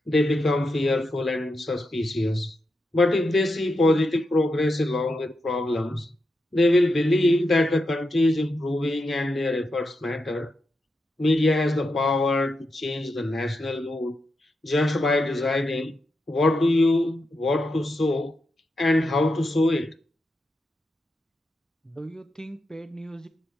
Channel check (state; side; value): normal; both; correlation 0.86